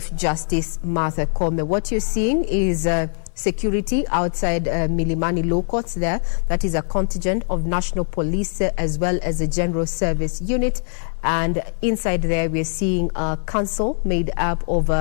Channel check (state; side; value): silent; right; digital silence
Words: Justice Martha Koome. What you're seeing is security outside Milimani Law Courts there. That is a contingent of National Police as well as a General Service Unit. And inside there, we're seeing a council made up of,